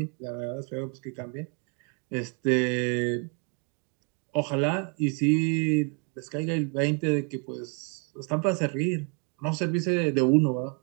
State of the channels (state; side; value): quieter; left; 37.7 dB